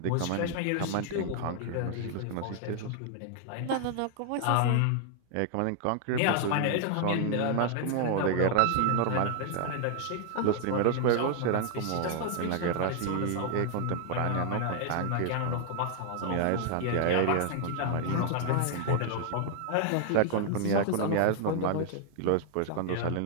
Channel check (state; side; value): different; both; correlation 0.00